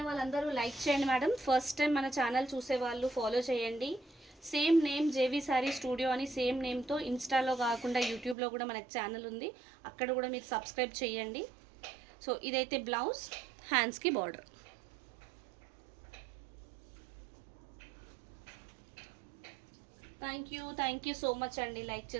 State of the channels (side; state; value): left; drops out; at 8.3 s